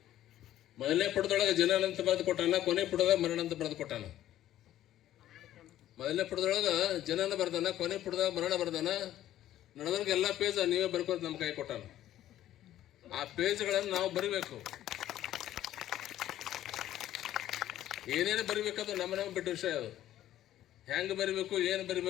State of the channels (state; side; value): quieter; right; 12.8 dB